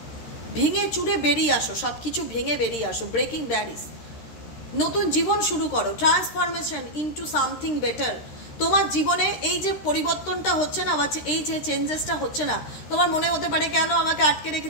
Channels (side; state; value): right; late; 13 ms